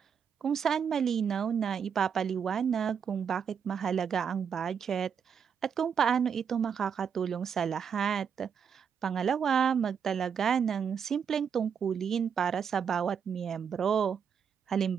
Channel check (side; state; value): left; quieter; 7.2 dB